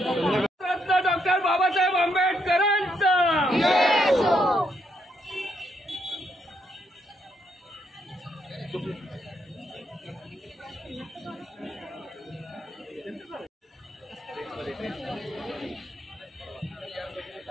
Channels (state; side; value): normal; both; correlation 0.76